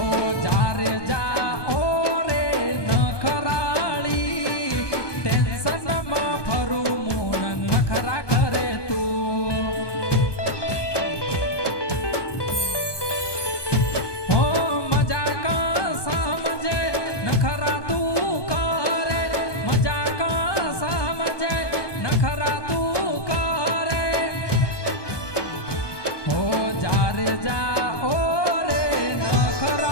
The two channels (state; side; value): late; right; 1.2 ms